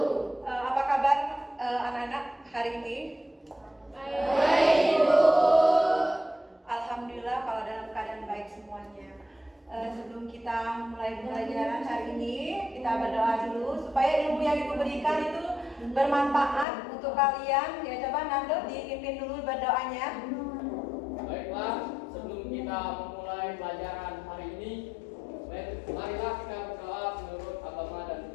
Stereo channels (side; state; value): right; drops out; at 16.7 s